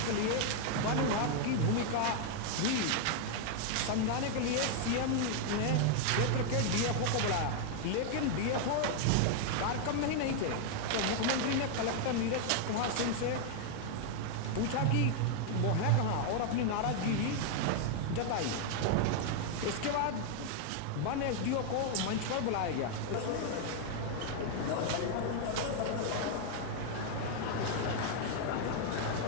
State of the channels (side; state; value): both; different; correlation 0.00